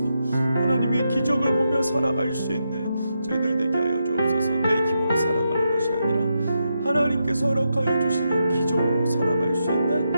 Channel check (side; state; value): both; inverted; correlation -0.84